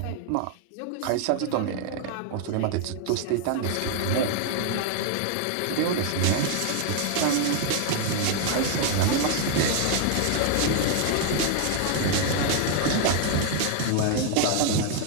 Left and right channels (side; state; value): both; different; correlation 0.00